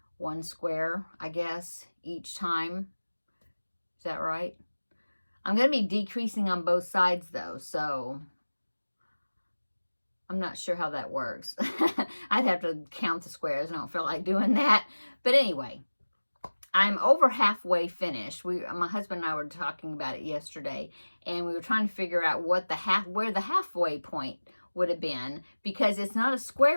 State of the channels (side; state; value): both; inverted; correlation -1.00